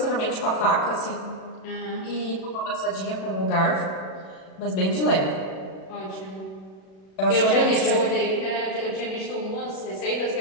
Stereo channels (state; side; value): late; right; 37 ms